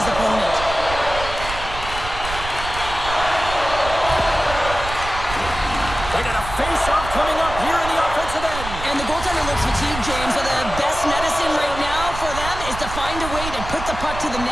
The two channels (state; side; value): noise; right; rumble, 9 dB below the sound